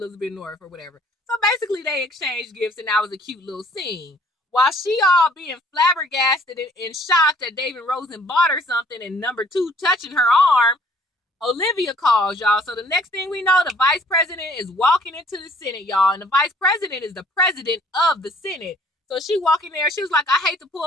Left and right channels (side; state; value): both; normal; correlation 0.57